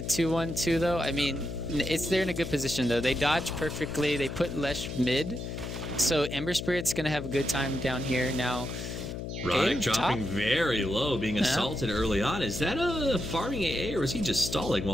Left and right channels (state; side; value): noise; left; hum, 6 dB below the sound